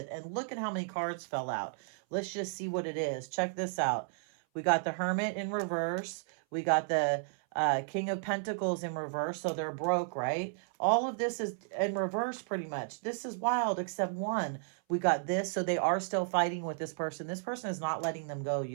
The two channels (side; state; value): left; silent; 56 dB below the other